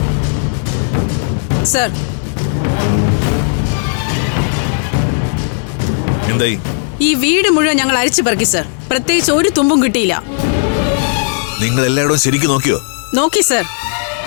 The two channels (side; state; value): right; silent; digital silence